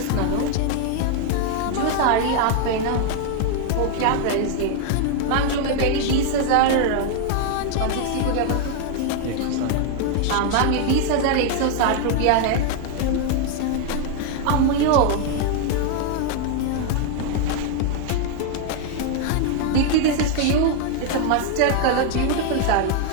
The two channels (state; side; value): different; both; correlation 0.00